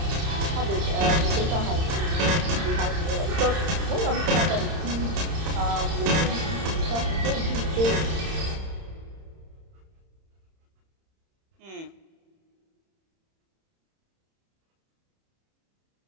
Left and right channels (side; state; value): left; late; 31 ms